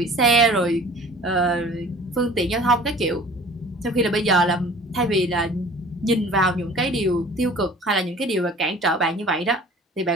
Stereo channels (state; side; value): normal; both; correlation 0.46